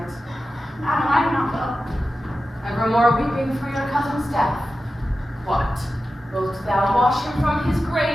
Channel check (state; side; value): normal; both; correlation 0.93